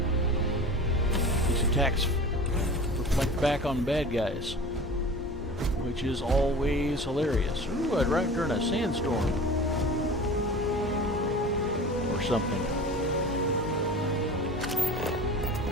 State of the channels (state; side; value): normal; both; correlation 0.38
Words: These attacks reflect back on bad guys, which is always hilarious. Ooh, I'd ride during a sandstorm. Something.